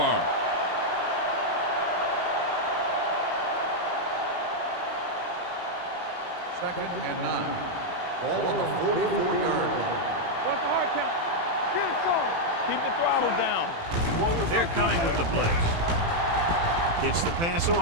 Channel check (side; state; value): left; late; 18 ms